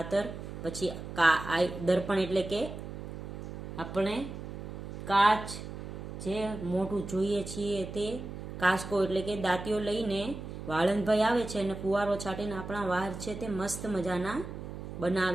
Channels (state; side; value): noise; right; hum, 9 dB below the sound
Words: પછી દર્પણ એટલે કે આપણે કાચ જે મોઢું જોઈએ છીએ તે, કાસ્કો એટલે કે દાંતીઓ લઈને વાળંદભાઈ આવે છે અને ફુવારો છાટીને આપણા વાળ છે તે મસ્ત મજાના